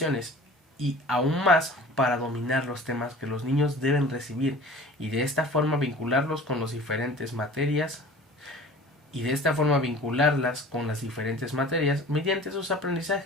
y aún más para dominar los temas que los niños deben recibir y de esta forma vincularlos con las diferentes materias mediante sus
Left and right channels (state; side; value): normal; both; correlation 0.43